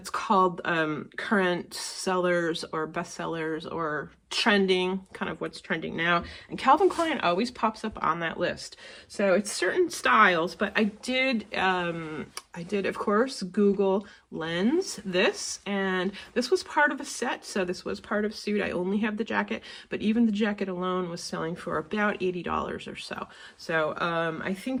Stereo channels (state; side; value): identical; both; correlation 1.00